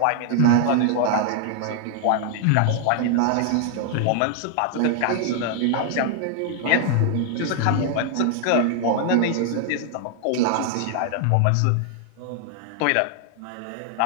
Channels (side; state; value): both; different; correlation 0.00